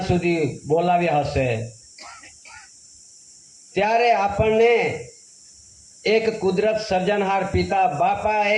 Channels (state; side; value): identical; both; correlation 1.00